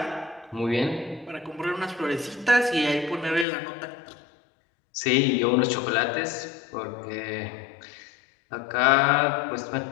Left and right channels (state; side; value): drops out; right; at 3.5 s